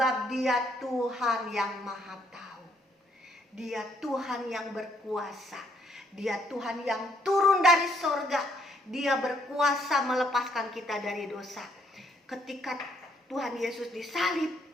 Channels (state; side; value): normal; both; correlation 0.69